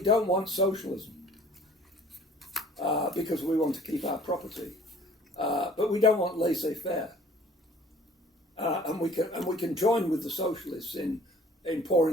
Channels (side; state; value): both; normal; correlation 0.52